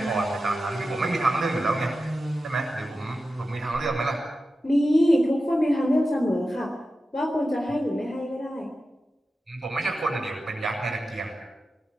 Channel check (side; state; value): both; normal; correlation 0.92